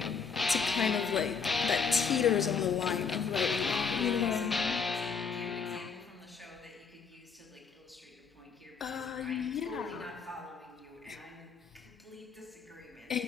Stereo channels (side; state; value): right; quieter; 5.6 dB